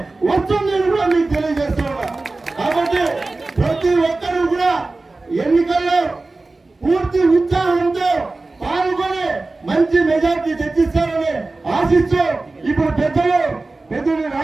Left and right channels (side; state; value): left; quieter; 3.3 dB